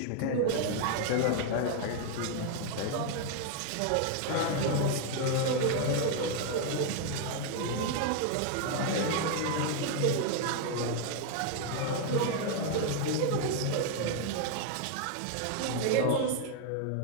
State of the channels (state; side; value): different; both; correlation 0.00